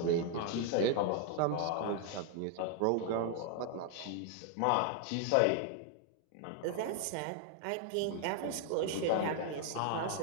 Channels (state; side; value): different; both; correlation 0.00